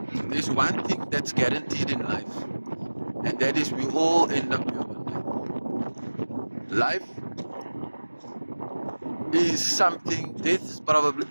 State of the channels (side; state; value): both; inverted; correlation -1.00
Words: There's one thing that's guaranteed in life, and that is we all end up here one day. Life is something. Death is probably